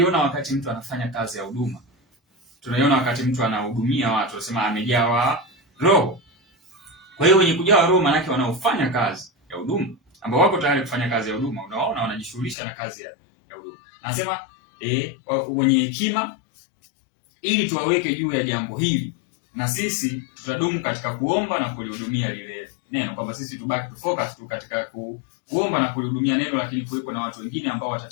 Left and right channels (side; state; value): right; drops out; at 12.6 s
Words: wakati mtu anafanya kazi ya huduma. Tunaiona wakati mtu anahudumia watu, tunasema amejawa roho. Kwa hiyo wenye kujawa roho maana yake wanaofanya kazi ya huduma, ambao wako tayari kufanya kazi ya huduma. Unaona, wanajishughulisha na kazi ya huduma. Nasema wenye hekima, ili tuwaweke juu ya jambo hili, na sisi tutadumu katika kuomba na kulihudumia lile neno, kwamba sisi tubaki focus tu katika kuomba na kulihudumia neno, lakini kuwepo na watu wengine ambao